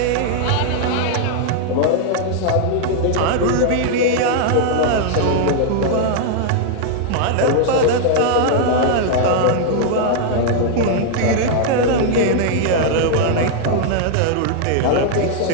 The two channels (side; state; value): both; different; correlation -0.01